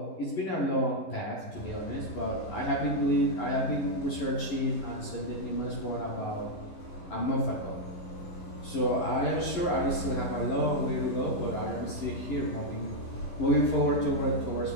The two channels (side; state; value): right; late; 11 ms